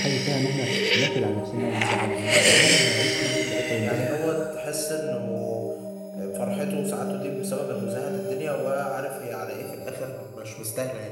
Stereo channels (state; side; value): identical; both; correlation 1.00